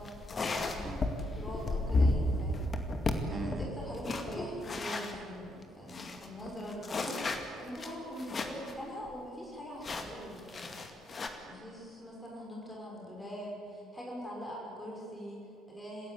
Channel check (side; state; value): both; normal; correlation 0.79